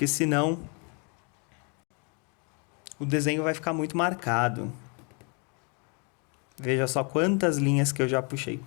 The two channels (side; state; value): right; quieter; 35.1 dB